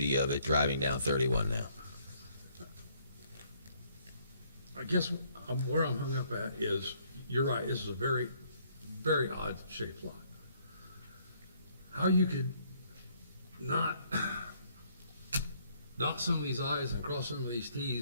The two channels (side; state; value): both; inverted; correlation -0.65